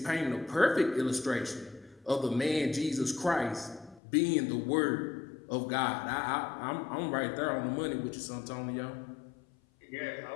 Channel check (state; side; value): drops out; right; at 4.0 s